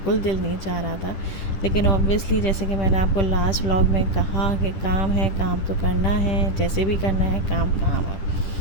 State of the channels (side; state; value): right; late; 10 ms